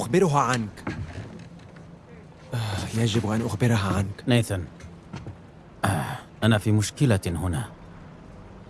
عنك. يجب أن أخبرها عنك. نيثان، أنا في مشكلة هنا.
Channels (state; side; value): identical; both; correlation 1.00